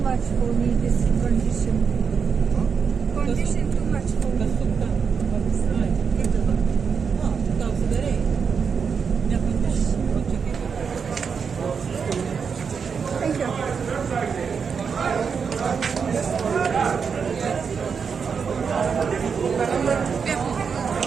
much for me, this condition. Condition too much for me. Thank you.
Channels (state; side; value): quieter; left; 6.1 dB